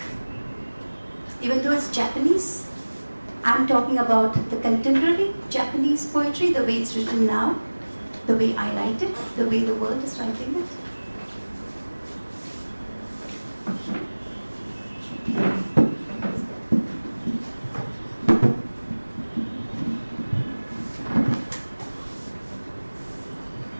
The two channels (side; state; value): both; inverted; correlation -1.00